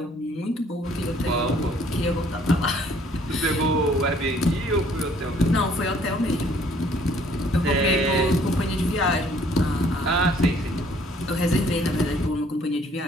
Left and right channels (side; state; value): both; normal; correlation 0.60